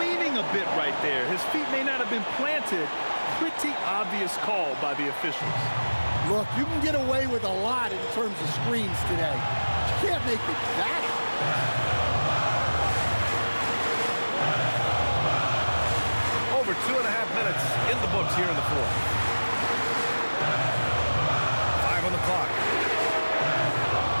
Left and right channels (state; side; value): inverted; both; correlation -1.00